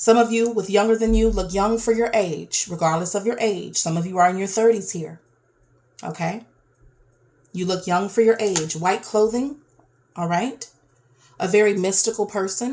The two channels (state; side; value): identical; both; correlation 1.00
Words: of you with younger than you look young for your age, regardless of your age. Some of you are in your 30s here. Okay. You look young for your age. White clothing. All right. A very mystical